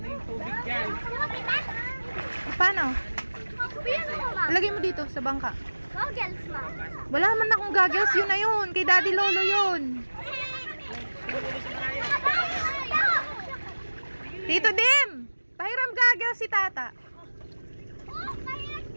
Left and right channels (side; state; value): both; inverted; correlation -1.00